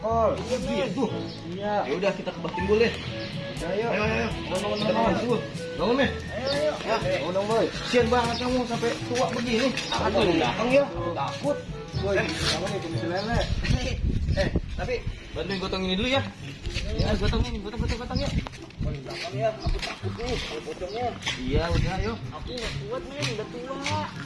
Gitu. Iya. Ya udah kita ke Bah Timbul deh. Ayo. Ayo. Bangun, Kita bangun dulu. Bangun nih. Ayo. Ya, Bangun, Boy. kasian banget kamu sampai tua begini. Aduh, datang ya. Takut. Boy, kamu nih kumis lele. Tapi bantuin gotong ini dulu ya. Ya, gotong ya. Oh, di belakang ya. Aku takut nih kalau pocongnya. Iya, udah ayo. Aku nggak kuat, men. Udah tua.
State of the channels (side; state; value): both; identical; correlation 1.00